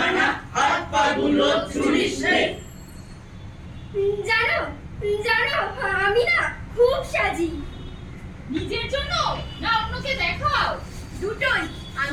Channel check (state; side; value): identical; both; correlation 1.00